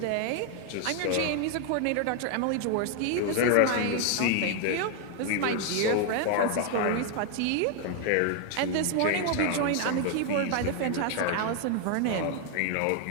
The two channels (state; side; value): different; both; correlation 0.00